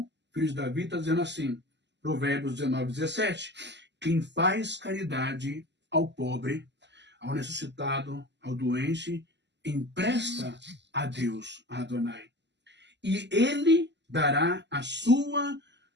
filho de Davi, está dizendo assim, Provérbios 19, 17, quem faz caridade ao pobre, ao necessitado, ao doente, empresta a Deus, a Adonai. E ele dará a sua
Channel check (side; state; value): left; late; 0.51 ms